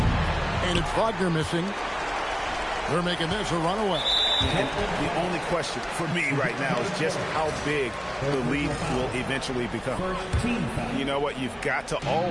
And it's Wagner missing. They're making this a runaway. The only question for me right now is just how big the lead will eventually become. You know what? You've got to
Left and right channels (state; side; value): identical; both; correlation 1.00